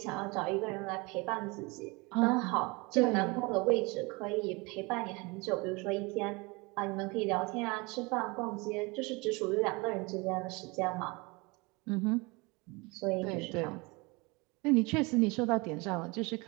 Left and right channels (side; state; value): left; quieter; 26.7 dB